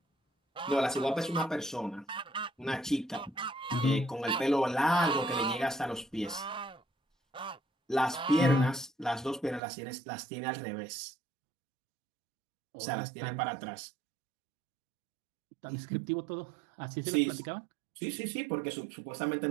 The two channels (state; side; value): drops out; left; at 9.6 s